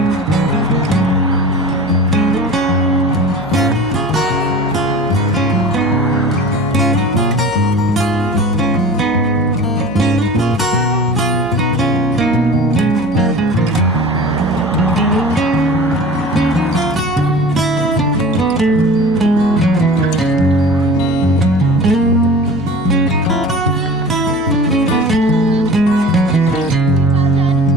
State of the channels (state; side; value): noise; right; hum, 19 dB below the sound